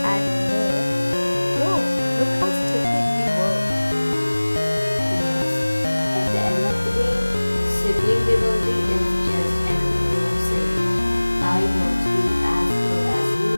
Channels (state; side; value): inverted; both; correlation -1.00